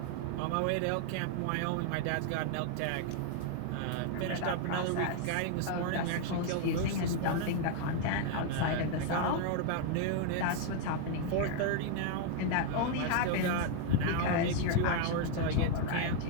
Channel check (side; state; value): both; different; correlation 0.00